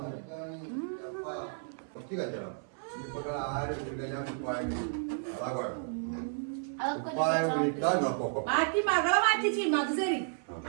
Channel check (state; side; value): silent; left; 56 dB below the other